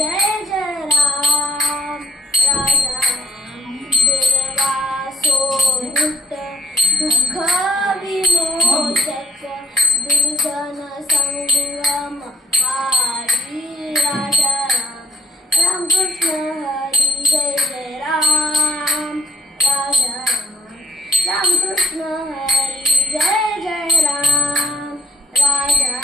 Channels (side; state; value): both; normal; correlation 0.78